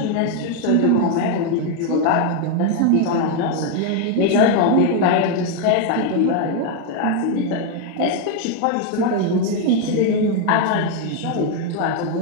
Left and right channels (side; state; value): both; different; correlation 0.01